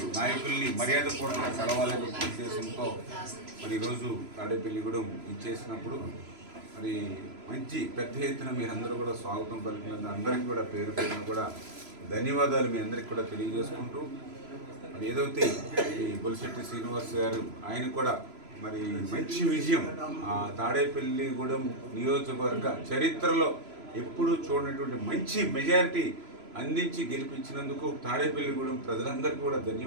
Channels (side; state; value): left; late; 3.0 ms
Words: నాయకుల్ని మర్యాదపూర్వకంగా కలవాలనే ఉద్దేశంతో మరి ఈరోజు తాడేపల్లిగూడెం ఇచ్చేసినప్పుడు మరి మంచి పెద్ద ఎత్తున మీరందరూ కూడా స్వాగతం పలికినందుకు అందరికీ కూడా పేరు పేరున కూడా ధన్యవాదాలు మీ అందరికీ కూడా తెలియజేసుకుంటూ మరి ఏదైతే ఈ బొలిశెట్టి శ్రీనివాస్ గారు ఆయన కూడా మరి మంచి విజయం ఆ తాడేపల్లిగూడెం నియోజకవర్గ చరిత్రలో ఎప్పుడూ చూడనటువంటి మంచి మెజారిటీ అందించి గెలిపించినందుకు తాడేపల్లిగూడెం ప్రజలందరికీ కూడా